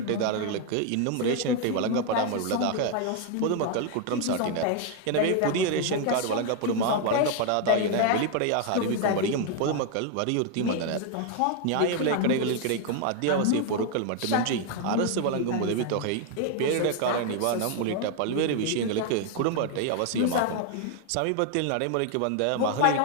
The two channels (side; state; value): both; different; correlation 0.01